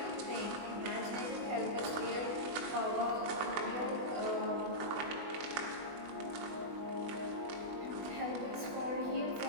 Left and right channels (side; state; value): left; late; 20 ms